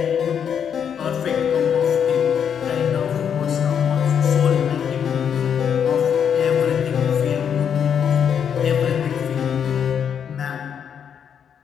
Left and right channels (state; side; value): quieter; right; 7.9 dB